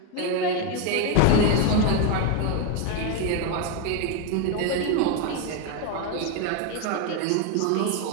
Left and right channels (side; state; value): both; different; correlation 0.01